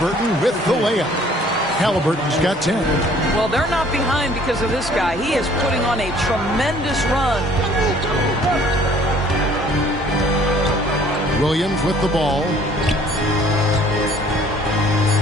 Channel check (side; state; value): both; normal; correlation 0.56